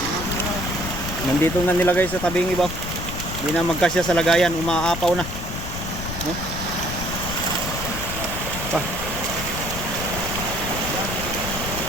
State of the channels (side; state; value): left; noise; rumble, 7 dB below the sound